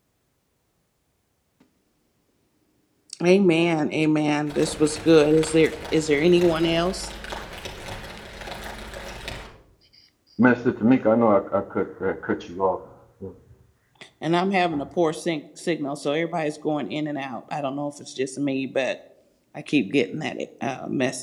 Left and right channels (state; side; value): identical; both; correlation 1.00